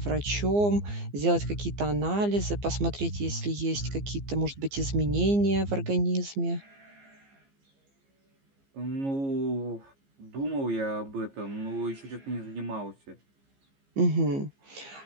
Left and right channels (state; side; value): late; left; 15 ms